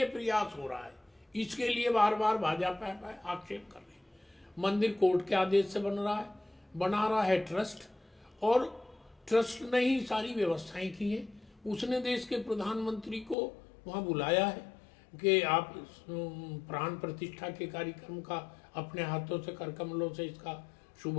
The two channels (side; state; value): right; drops out; at 13.4 s